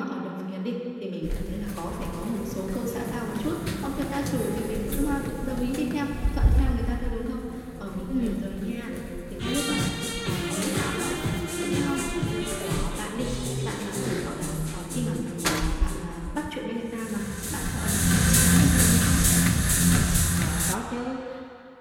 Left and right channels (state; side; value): identical; both; correlation 1.00